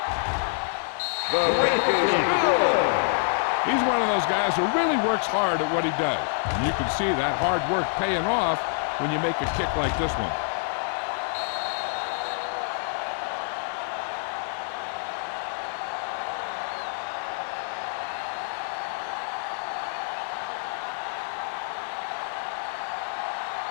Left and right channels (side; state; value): right; silent; 60 dB below the other